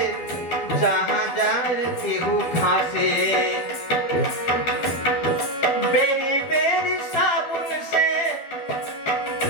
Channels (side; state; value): right; late; 12 ms